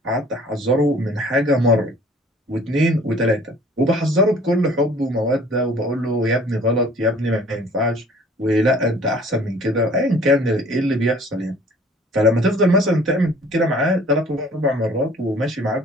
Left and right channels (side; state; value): both; normal; correlation 0.52